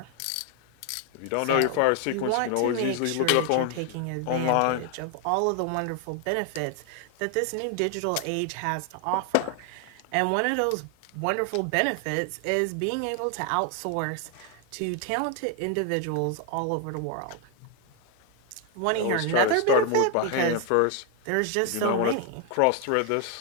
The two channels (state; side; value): different; both; correlation 0.01